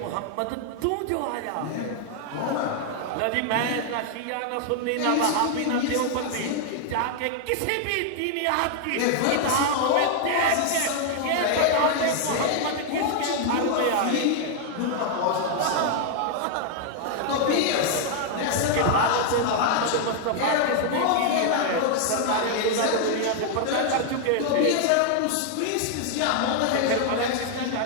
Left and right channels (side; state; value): both; different; correlation 0.00